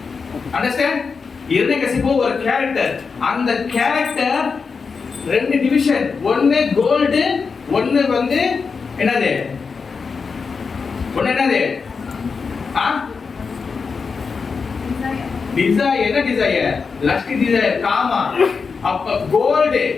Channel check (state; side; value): quieter; right; 5.2 dB